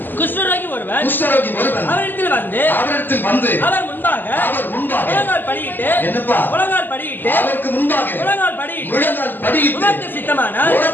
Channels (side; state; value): right; late; 0.091 ms